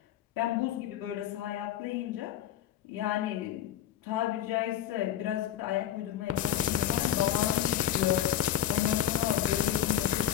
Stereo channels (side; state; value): right; quieter; 11.0 dB